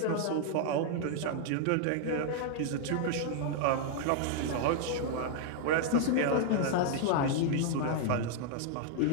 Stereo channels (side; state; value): both; different; correlation 0.00